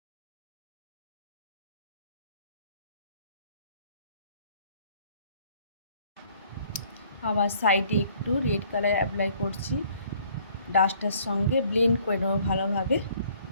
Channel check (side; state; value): both; inverted; correlation -0.59